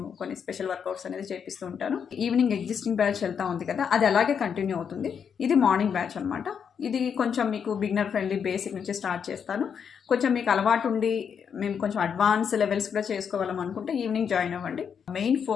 కొన్ని స్పెషల్ వర్కౌట్స్ అనేది చేపిస్తూ ఉంటాను. ఈవినింగ్ ఎగ్జిస్టింగ్ బ్యాచ్ వెళ్తా ఉంది కదా, అది అలాగే కంటిన్యూ అవుతుంది. ఇది మార్నింగ్ బ్యాచ్ అనమాట. ఇది కొంచెం మీకు బిగినర్ ఫ్రెండ్లీ, బేసిక్ నుంచి స్టార్ట్ చేస్తాను. కొంచెం మీకు అలవాటు ఉండి మేము కొంచెం అడ్వాన్స్ లెవెల్స్ కూడా చేసుకోవాలం అనుకుంటే ఈవినింగ్ జాయిన్ అవ్వండి. మెయిన్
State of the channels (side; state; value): right; quieter; 7.2 dB